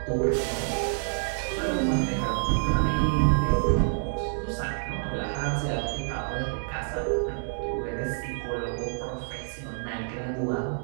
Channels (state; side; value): silent; left; digital silence